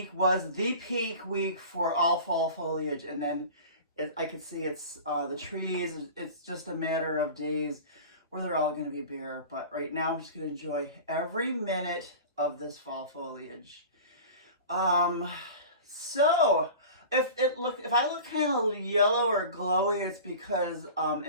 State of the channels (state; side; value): inverted; both; correlation -0.37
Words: was the peak week for all fall foliage, and then I can see it's the trees. It's just a matter of days where they're all going to be bare. But right now, I'm just going to enjoy every minute of this fall foliage. So if I look kind of yellow or glowy, it's because